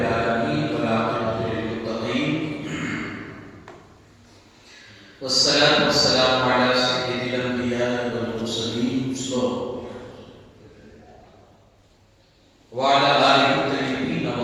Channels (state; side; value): identical; both; correlation 1.00